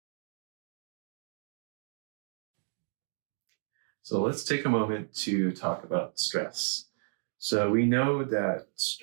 So let's take a moment to talk about stress. So we know that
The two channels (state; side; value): silent; left; 56 dB below the other